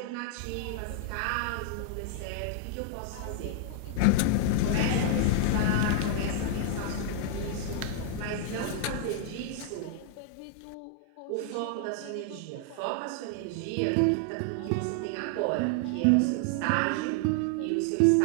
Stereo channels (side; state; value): both; different; correlation 0.00